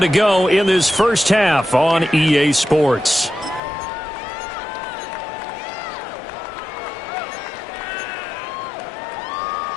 go in this first half on EA Sports.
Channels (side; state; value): right; drops out; at 3.6 s